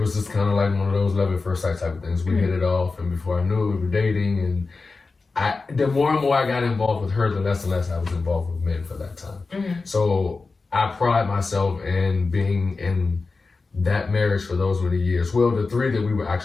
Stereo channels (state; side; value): quieter; right; 4.0 dB